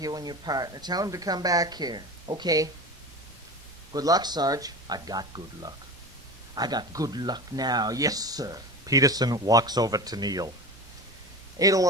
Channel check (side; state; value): both; normal; correlation 0.30